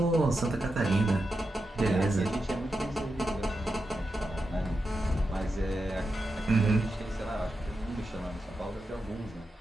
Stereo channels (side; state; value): both; normal; correlation 0.88